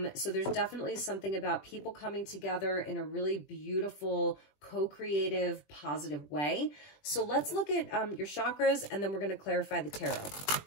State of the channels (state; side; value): late; right; 20 ms